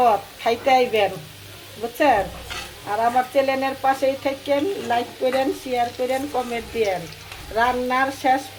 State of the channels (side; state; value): both; identical; correlation 1.00